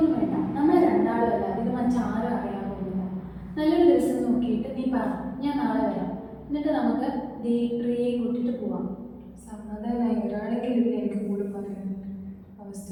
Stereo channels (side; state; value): both; identical; correlation 1.00